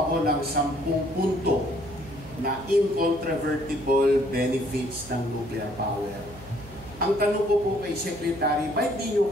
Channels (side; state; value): right; noise; hum, 18 dB below the sound